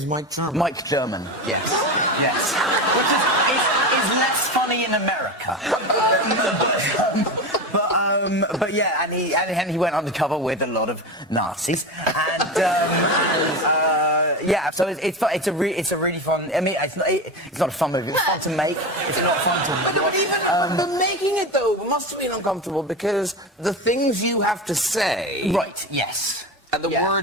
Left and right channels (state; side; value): normal; both; correlation 0.23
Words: Mike German. Mike German. Yes. Yes. Which is less funny in America. But yeah, and he went undercover with a lot of Nazis, and yeah, so it's a really fun. I mean, it's not a fun movie. It's fun to make. It's not fun to watch. But making it though must have been uncomfortable because the things you have to say. Right. Yes. And the